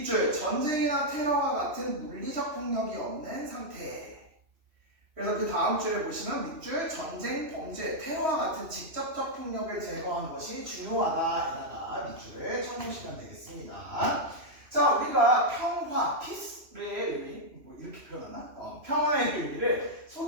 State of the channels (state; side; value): late; left; 3.0 ms